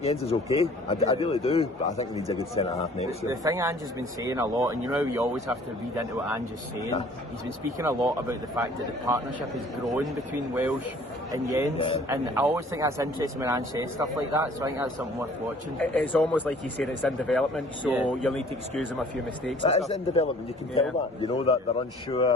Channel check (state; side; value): normal; both; correlation 0.53